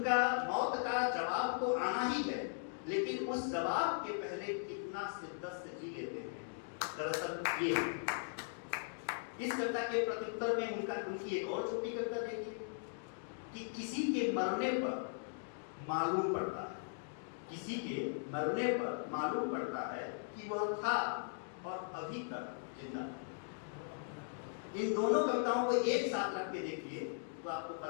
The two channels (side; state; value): right; silent; digital silence